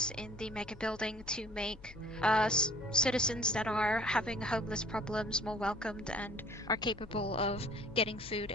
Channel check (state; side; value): noise; left; hum, 19 dB below the sound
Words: in the Mega Building to make citizens that are having homeless problems more welcomed and are capable of getting food